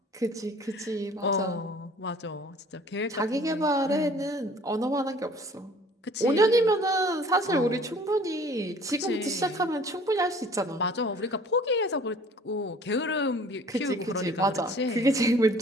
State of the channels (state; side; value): normal; both; correlation 0.51